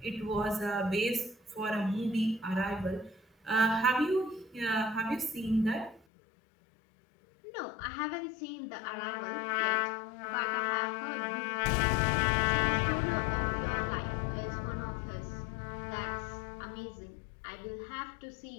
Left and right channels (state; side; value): drops out; right; at 6.0 s